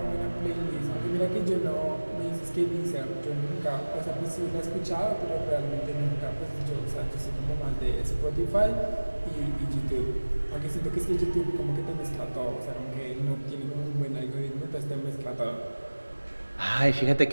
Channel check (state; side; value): inverted; both; correlation -1.00